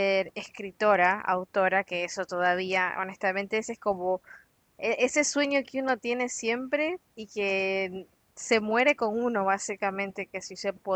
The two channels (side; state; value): both; identical; correlation 1.00